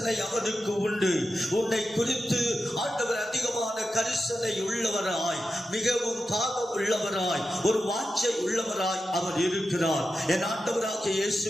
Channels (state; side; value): normal; both; correlation 0.90